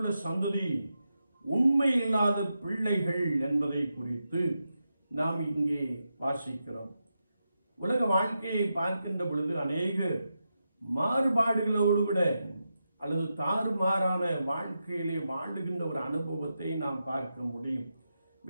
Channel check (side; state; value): both; inverted; correlation -0.88